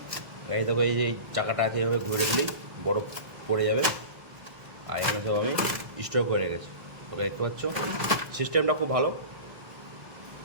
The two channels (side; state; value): left; late; 1.6 ms